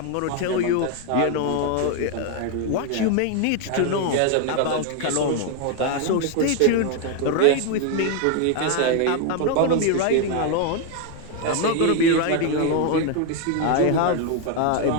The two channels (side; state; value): both; different; correlation 0.01